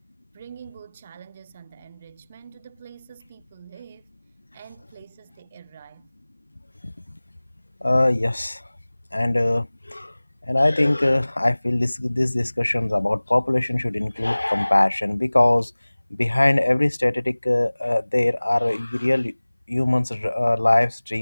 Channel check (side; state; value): both; inverted; correlation -1.00